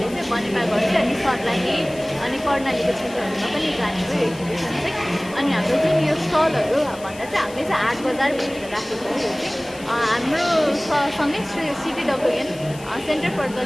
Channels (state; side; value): noise; left; hiss, 19 dB below the sound